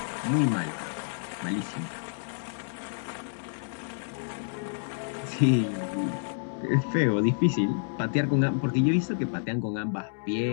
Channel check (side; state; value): right; silent; digital silence